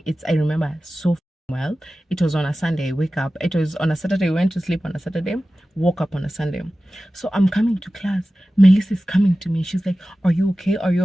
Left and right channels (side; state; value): both; normal; correlation 0.95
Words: I remember so well. It was on a Sunday. I wake up. It was on a Saturday. I went to sleep on a Saturday, woke up on a Sunday. So I'm coming to class. Melissa is coming to me. She's like, are you okay? Are you